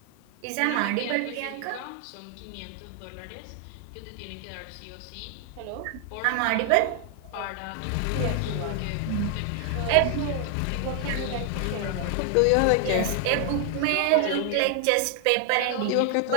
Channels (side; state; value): both; different; correlation 0.00